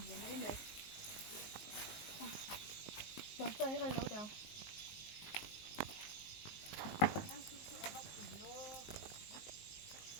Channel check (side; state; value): right; late; 19 ms